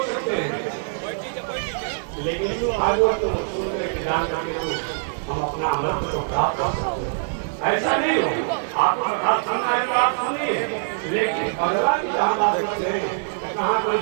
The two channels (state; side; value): silent; left; digital silence